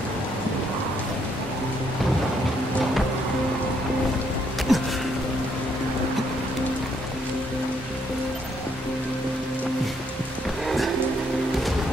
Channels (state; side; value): normal; both; correlation 0.72